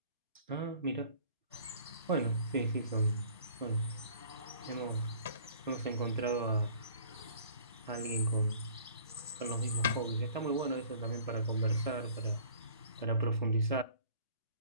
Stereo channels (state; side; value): inverted; both; correlation -0.51